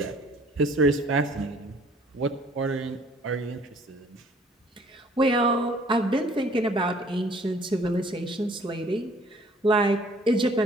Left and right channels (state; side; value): normal; both; correlation 0.57